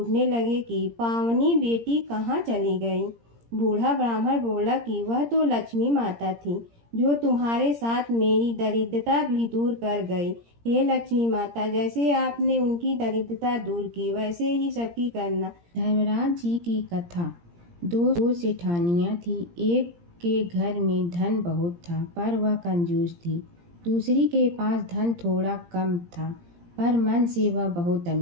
लगे कि पावनी बेटी कहाँ चली गई। बूढ़ा ब्राह्मण बोला कि वह तो लक्ष्मी माता थी, जो तुम्हारे साथ मेरी दरिद्रता भी दूर कर गई। हे लक्ष्मी माता, जैसे आपने उनकी दरिद्रता दूर की वैसे ही सबकी करना। धर्मराज जी की कथा। दो सेठानियाँ थी। एक के घर में धन बहुत था पर वह कंजूस थी। दूसरी के पास धन थोड़ा कम था पर मन से वह बहुत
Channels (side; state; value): left; late; 17 ms